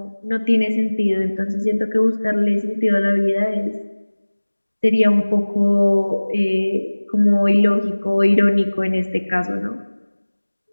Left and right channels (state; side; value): inverted; both; correlation -1.00